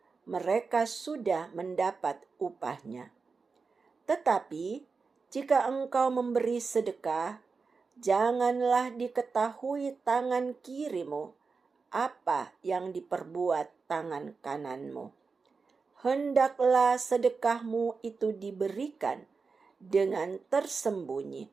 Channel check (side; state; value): left; quieter; 4.7 dB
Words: mereka sudah mendapat upahnya. Tetapi jika engkau memberi sedekah, janganlah diketahui tangan kirimu apa yang diperbuat tangan kananmu. Hendaklah sedekahmu itu diberikan dengan tersembunyi,